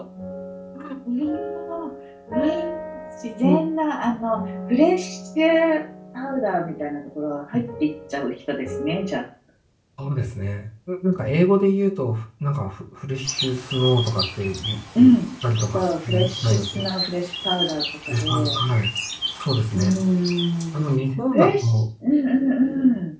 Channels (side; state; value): both; identical; correlation 1.00